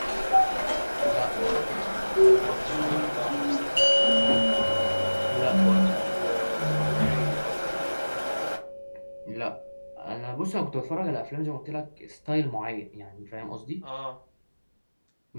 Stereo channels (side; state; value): both; inverted; correlation -1.00